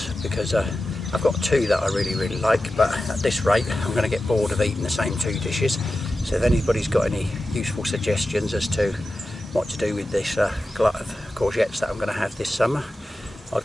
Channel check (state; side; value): normal; both; correlation 0.93